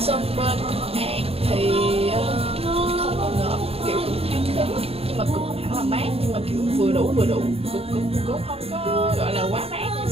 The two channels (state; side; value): late; left; 0.28 ms